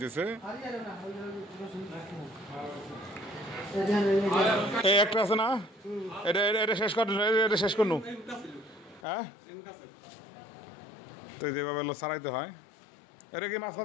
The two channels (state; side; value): drops out; right; at 9.0 s